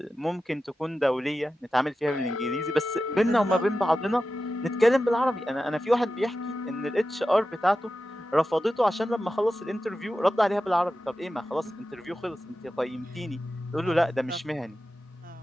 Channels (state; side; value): normal; both; correlation 0.93